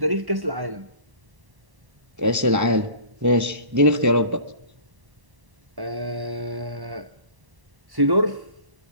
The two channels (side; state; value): left; late; 1.0 ms